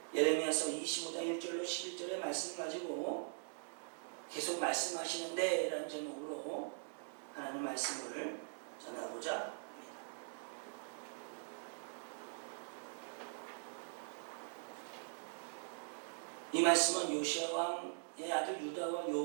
예레미야서 25장 1절로 11절의 말씀 가지고 계속 말씀하시는데 라는 제목으로 하나님 말씀을 전하고자 합니다. 이 말씀은 요시야 왕의 아들 유다와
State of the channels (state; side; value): silent; left; digital silence